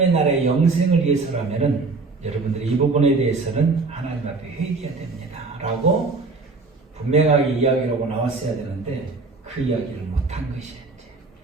나라의 영생을 위해서라면은 여러분들이 이 부분에 대해서는 하나님 앞에 회개해야 됩니다. 라고 분명하게 이야기를 하고 나왔어야 되는데 그 이야기를 못한 것이었지.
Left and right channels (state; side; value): quieter; left; 3.8 dB